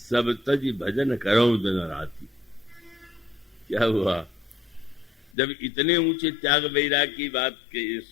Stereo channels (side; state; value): right; drops out; at 5.4 s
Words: तज भजन करऊ दिन राती। क्या हुआ? जब इतने ऊंचे त्याग वैराग की बात